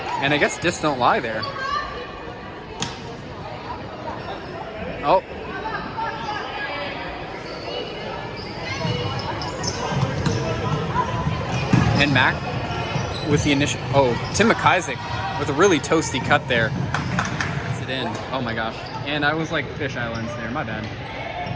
and I guess discs don't lie there. Oh. And Mac with the initial, Tim McIsaac with a really toasty cut there. Gets it in. Oh my gosh. And I was like fish islands there, my bad.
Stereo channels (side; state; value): both; identical; correlation 1.00